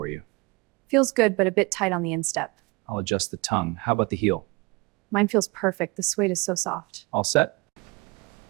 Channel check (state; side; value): quieter; left; 25.4 dB